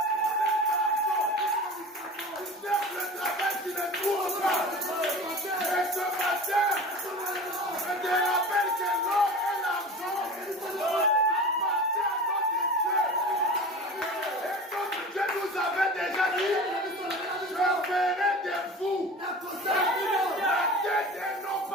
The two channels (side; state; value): both; normal; correlation 0.35